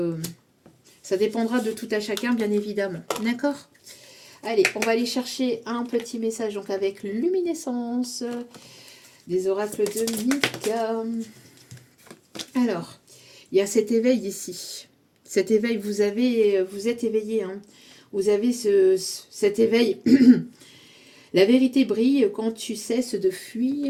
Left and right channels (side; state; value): both; identical; correlation 1.00